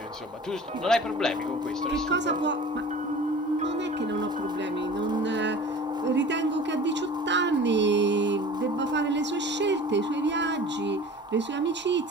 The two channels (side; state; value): both; normal; correlation 0.41